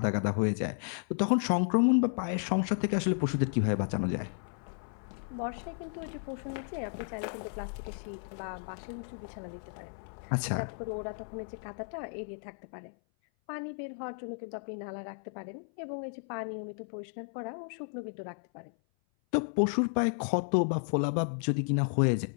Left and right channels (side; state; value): right; silent; 56 dB below the other